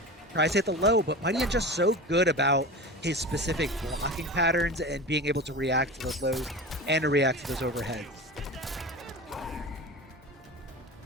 Tries to hit the low, but MightyUnjust so good about his specific blocking patterns and being able to react to those lows and to react to those overheads.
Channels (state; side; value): normal; both; correlation 0.30